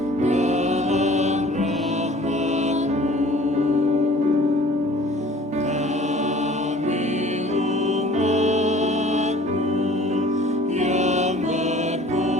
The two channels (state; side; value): normal; both; correlation 0.50